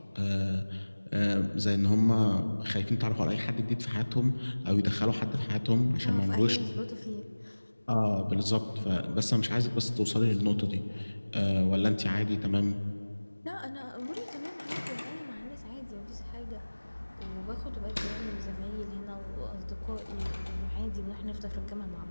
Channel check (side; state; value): both; inverted; correlation -1.00